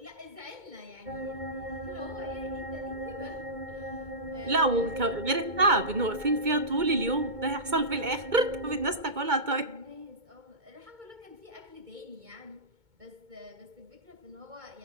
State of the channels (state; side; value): late; left; 2.2 ms